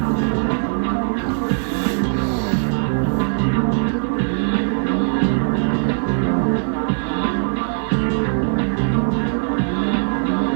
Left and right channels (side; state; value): left; silent; digital silence